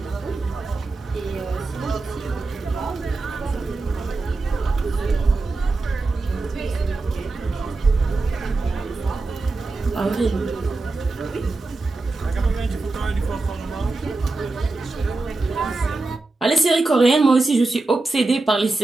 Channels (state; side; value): quieter; left; 3.4 dB